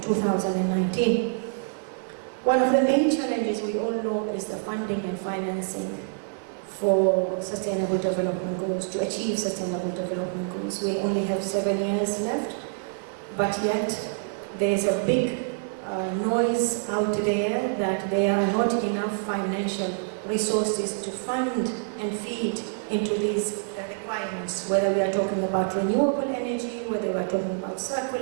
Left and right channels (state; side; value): silent; left; digital silence